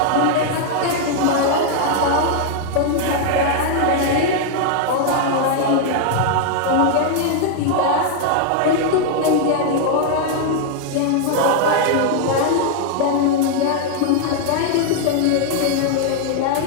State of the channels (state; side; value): different; both; correlation 0.00